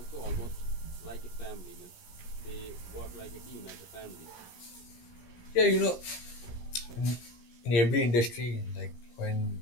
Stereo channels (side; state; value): right; late; 17 ms